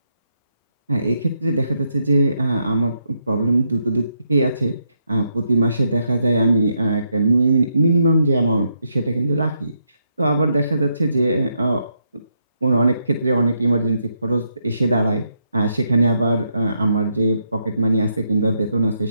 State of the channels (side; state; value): both; inverted; correlation -0.79